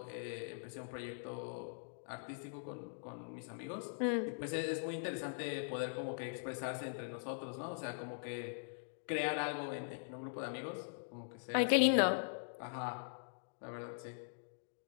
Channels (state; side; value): silent; right; digital silence